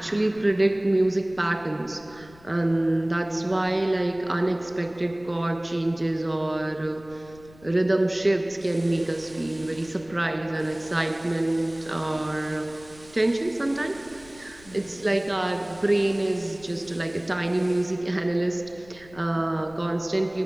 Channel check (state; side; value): noise; left; rumble, 24 dB below the sound